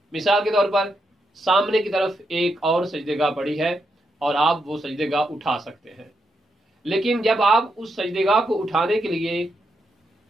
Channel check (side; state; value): both; normal; correlation 0.82